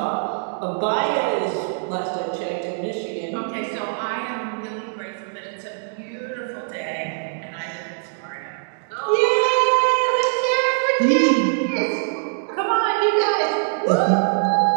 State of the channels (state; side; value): silent; left; digital silence